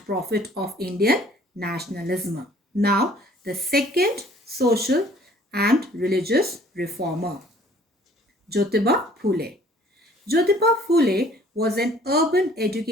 prophet of Indian nationalism. Now, the second social and religious reformer, Jyotiba Phule. Jyotiba Phule was an urban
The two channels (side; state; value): both; normal; correlation 0.55